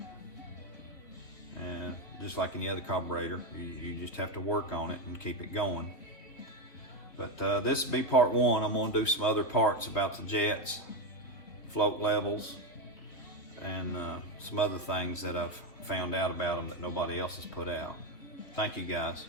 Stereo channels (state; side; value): late; right; 3.6 ms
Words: And just like any other carburetor, you just have to work on it and keep it going. But this will be part one. I'm going to do some other parts about the jets, float levels, and some other things that I've found out about them that nobody else has put out. Thank you guys.